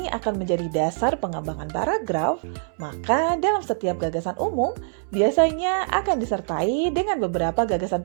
akan menjadi dasar pengembangan paragraf, maka dalam setiap gagasan umum biasanya akan disertai dengan beberapa gagasan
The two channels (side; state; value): left; silent; 63 dB below the other